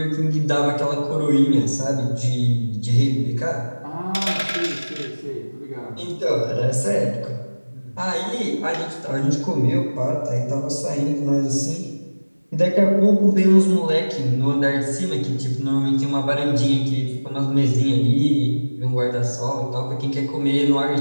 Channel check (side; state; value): both; inverted; correlation -1.00